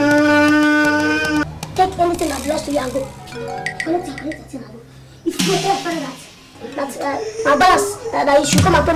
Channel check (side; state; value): both; identical; correlation 1.00